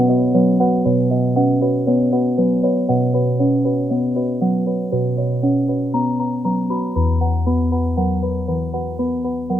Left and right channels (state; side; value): normal; both; correlation 0.84